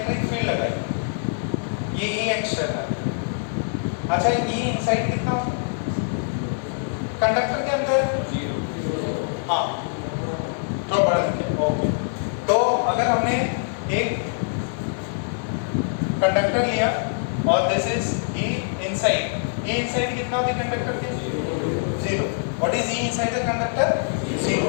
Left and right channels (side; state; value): right; silent; 56 dB below the other